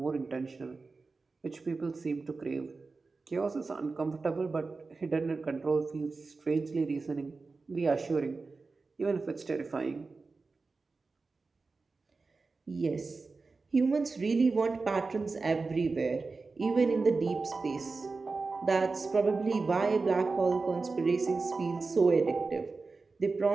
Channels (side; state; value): left; quieter; 4.0 dB